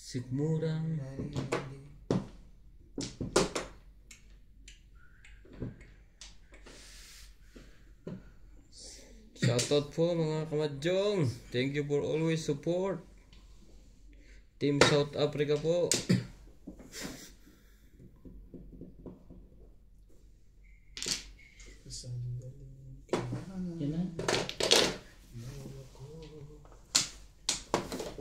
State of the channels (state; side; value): identical; both; correlation 1.00